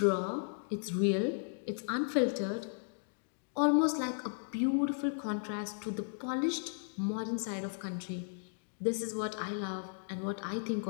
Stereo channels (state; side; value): silent; right; digital silence